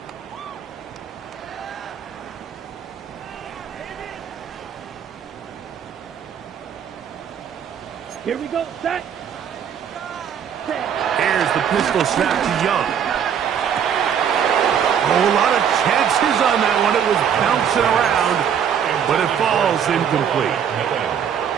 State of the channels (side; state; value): left; quieter; 8.3 dB